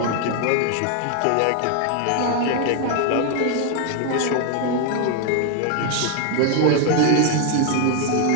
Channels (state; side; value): different; both; correlation 0.00